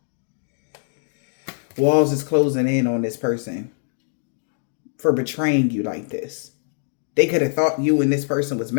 Walls is closing in on this person for betraying you like this. They could have thought you and this person was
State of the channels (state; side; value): silent; right; digital silence